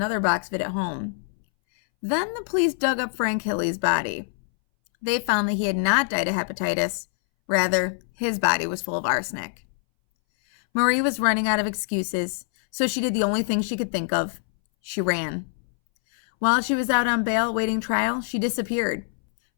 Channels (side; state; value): right; silent; 62 dB below the other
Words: box of it at home. Then the police dug up Frank Hilley's body. They found that he had not died of hepatitis, Rather, his body was full of arsenic. Marie was running out of excuses, so she did the only thing she could think of. She ran. While she was out on bail awaiting trial, she disappeared.